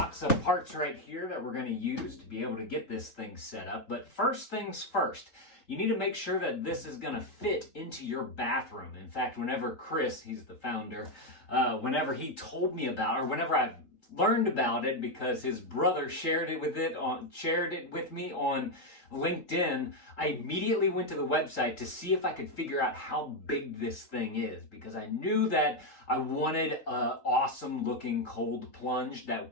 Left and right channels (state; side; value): late; right; 3.8 ms